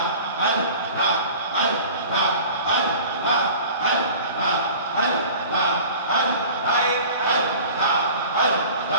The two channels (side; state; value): both; inverted; correlation -0.41